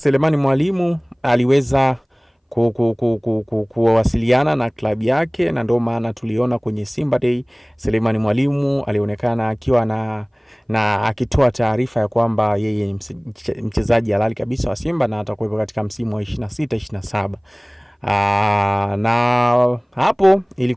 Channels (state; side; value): identical; both; correlation 1.00